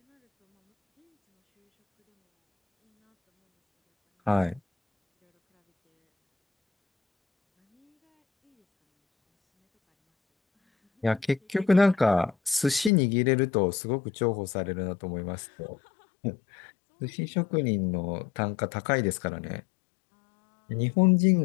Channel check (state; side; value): drops out; right; at 12.9 s